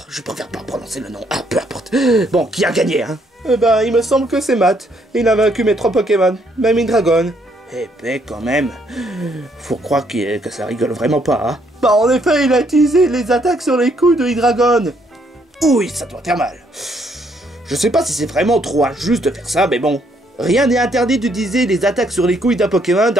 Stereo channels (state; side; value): normal; both; correlation 0.70